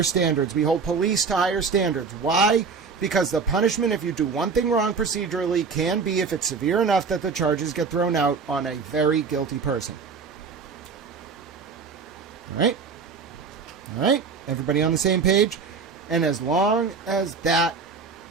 standards. We hold police to higher standards. Why? Because the punishment, if you do one thing wrong procedurally, can be, if it's severe enough, that the charges get thrown out on a very guilty person. All right? All right? Everybody on the same page? And as long as that...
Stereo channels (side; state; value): left; quieter; 5.2 dB